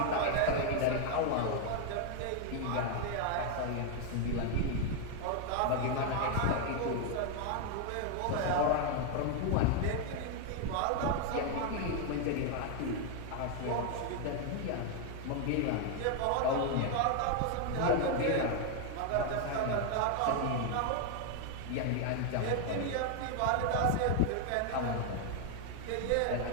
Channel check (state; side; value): different; both; correlation 0.00